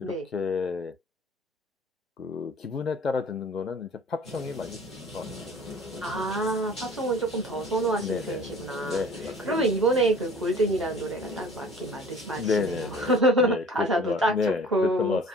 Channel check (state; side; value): normal; both; correlation 0.47